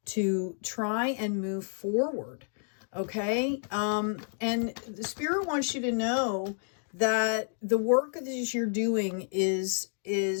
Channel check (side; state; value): right; silent; digital silence